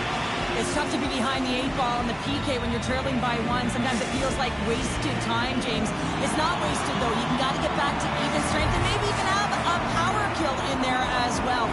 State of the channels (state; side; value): identical; both; correlation 1.00